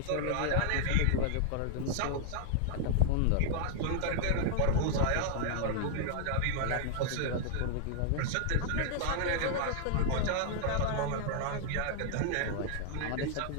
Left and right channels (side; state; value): both; different; correlation 0.00